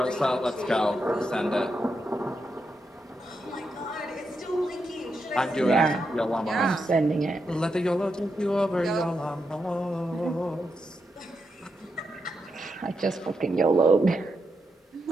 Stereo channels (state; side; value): normal; both; correlation 0.84